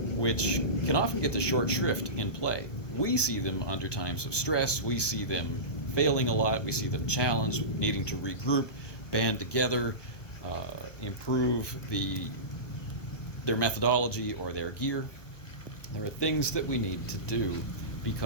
which can often get the short shrift in play. We see them under times of stress, we see them failing a lot, we see them challenged, needing to regroup, band together, improve their methodology or their gear. There are things that we need to do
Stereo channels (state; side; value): late; right; 1.1 ms